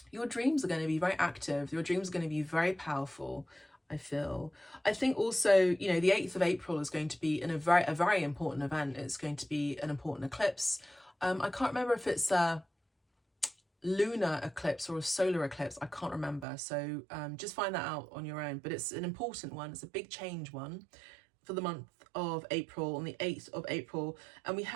your dreams are going to be very active. Your dreams are going to be very powerful, I feel. I think also, you know, the 8th of April is going to be a very important event. It's going to be an important eclipse. I can't remember if it's lunar eclipse or a solar eclipse. I can't remember. So just find that out on your own. But it's an important one. It's a big change one for the month of April, on the 8th of April. And we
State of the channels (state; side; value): drops out; left; at 16.4 s